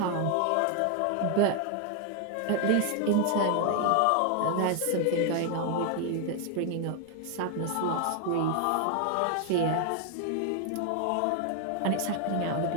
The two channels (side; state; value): both; different; correlation 0.00